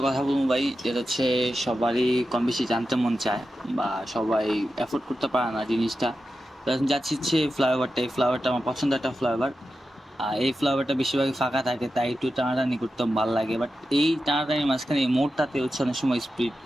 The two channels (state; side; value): normal; both; correlation 0.91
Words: কথা বলবো ভাই, যেটা হচ্ছে সবারই কম বেশি জানতে মন চায় বা সবাই এফোর্ড করতে পারে না জিনিসটা। তো এখন যাচ্ছি হচ্ছে ফ্লাইওভারটা। এই ফ্লাইওভারটা আমার পছন্দের একটা ফ্লাইওভার। এই ফ্লাইওভারটা বেশিরভাগই ফাঁকা থাকে, তাই একটু টানাটানি করতে ভালো লাগে। বাট এই টানাটানির মাঝখানে এই মোড়টাতে হচ্ছে অনেক সময় স্পিড